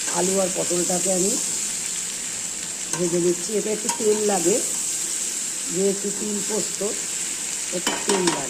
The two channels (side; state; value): both; identical; correlation 1.00